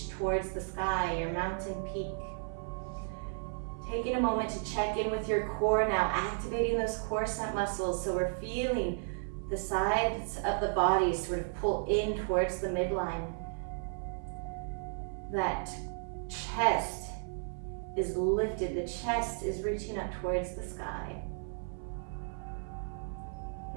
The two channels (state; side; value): silent; left; 55 dB below the other